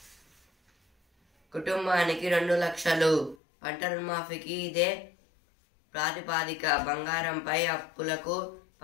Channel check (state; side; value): drops out; right; at 3.4 s